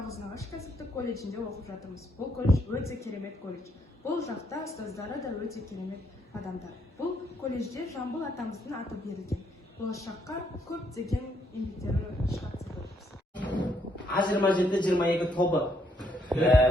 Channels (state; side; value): normal; both; correlation 0.72